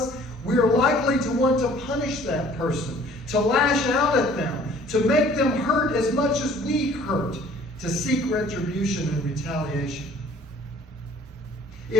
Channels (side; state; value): both; normal; correlation 0.54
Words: we are likely to want to punish that person, to lash out at them, to make them hurt as much as we hurt, to seek retribution and retaliation.